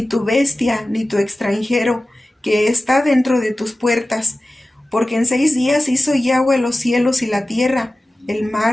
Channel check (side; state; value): both; normal; correlation 0.96